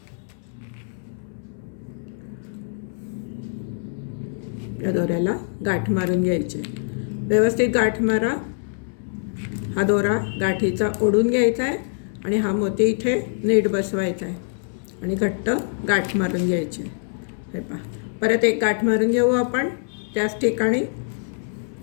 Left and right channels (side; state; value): right; silent; 63 dB below the other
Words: या दोऱ्याला गाठ मारून घ्यायची. व्यवस्थित गाठ मारा. हा दोरा गाठीचा ओढून घ्यायचा आहे आणि हा मोती इथे नीट बसवायचा आहे आणि घट्ट गाठ मारून घ्यायची. हे पहा, परत एक गाठ मारून घेऊ आपण त्याच ठिकाणी.